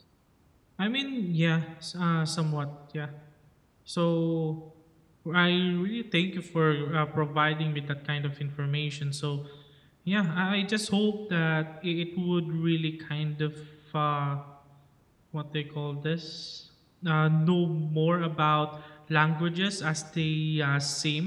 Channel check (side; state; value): both; identical; correlation 1.00